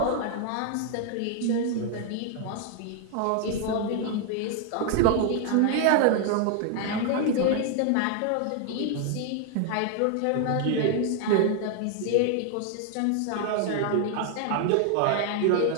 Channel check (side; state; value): both; different; correlation 0.00